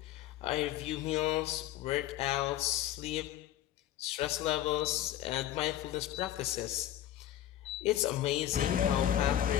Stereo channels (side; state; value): right; quieter; 12.4 dB